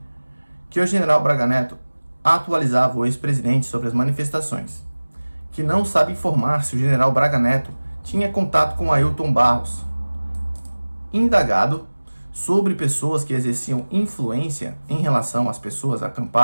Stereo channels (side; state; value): both; inverted; correlation -1.00